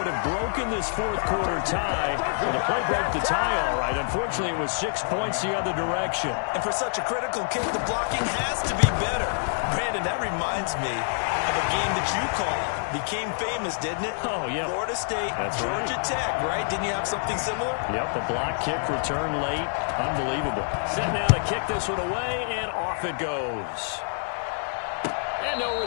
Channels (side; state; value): right; silent; digital silence